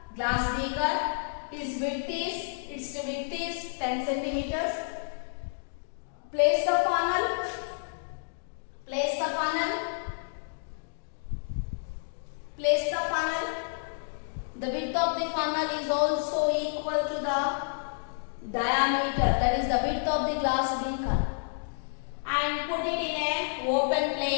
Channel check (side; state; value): right; silent; digital silence